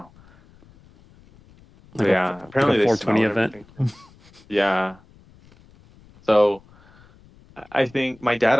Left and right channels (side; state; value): left; noise; rumble, 27 dB below the sound